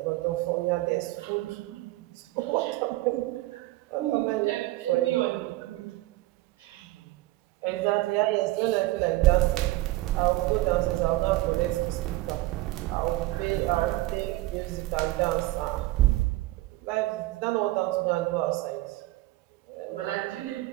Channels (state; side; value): quieter; left; 18.3 dB